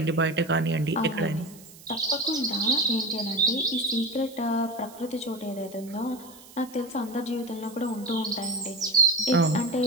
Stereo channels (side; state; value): right; noise; hiss, 21 dB below the sound